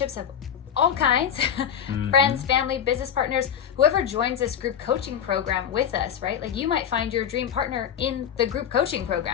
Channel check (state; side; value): quieter; right; 8.7 dB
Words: have all kinds, friends, family, business partners, whoever joins this group coaching program with us, right? Like you might find your dream partner in the group coaching